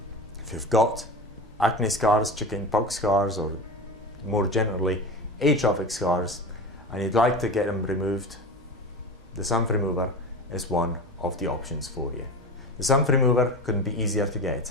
if you've got acne scars, chicken pox scars, or more generally atrophic scars, and you'd like to get them removed, the sun remover is one of the options for you. The sun remover couldn't be easier to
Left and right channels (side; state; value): both; normal; correlation 0.28